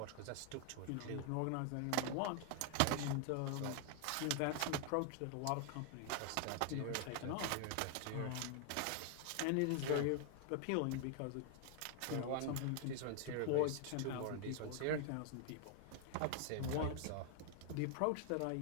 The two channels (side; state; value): both; different; correlation 0.00